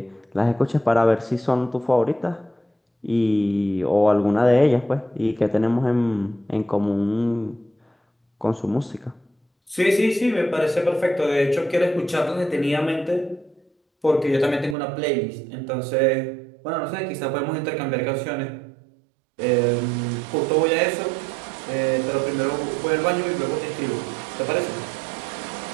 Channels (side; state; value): left; drops out; at 14.8 s